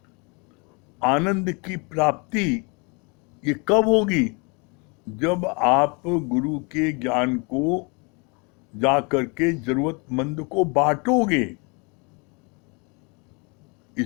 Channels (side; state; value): right; quieter; 31.8 dB